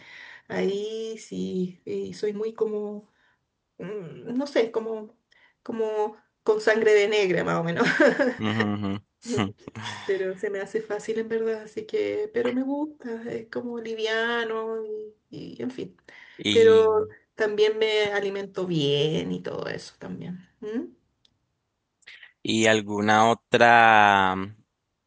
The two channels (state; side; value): identical; both; correlation 1.00